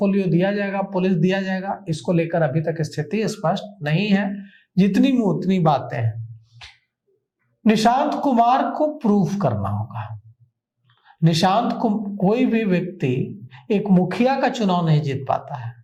दिया जाएगा, पुलिस दिया जाएगा? इसको लेकर अभी तक स्थिति स्पष्ट नहीं है। जितनी में उतनी बातें हैं। निशांत कुमार को प्रूफ करना होगा। निशांत को कोई भी व्यक्ति एक मुखिया का चुनाव नहीं जीत पाता है,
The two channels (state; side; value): identical; both; correlation 1.00